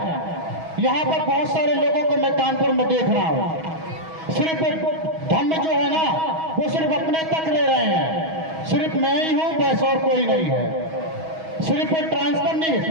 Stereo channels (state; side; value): late; left; 6.2 ms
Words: यहाँ पर बहुत सारे लोगों को मैं कानपुर में देख रहा हूँ, सिर्फ धम्म जो है ना वो सिर्फ अपने तक ले रहे हैं, सिर्फ मैं ही हूँ बस और कोई नहीं है। सिर्फ ट्रांसफर